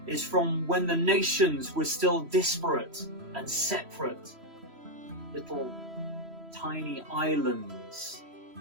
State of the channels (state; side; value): late; left; 3.0 ms